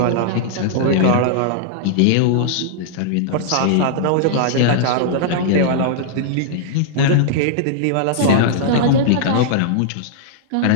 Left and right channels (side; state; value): both; different; correlation -0.01